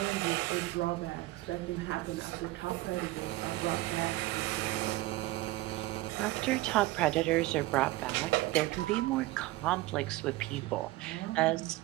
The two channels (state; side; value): quieter; left; 18.6 dB